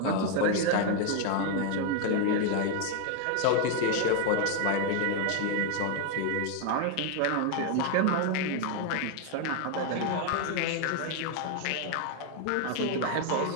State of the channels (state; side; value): different; both; correlation 0.01